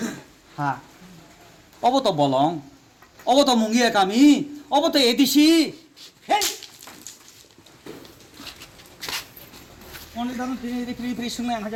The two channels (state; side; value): identical; both; correlation 1.00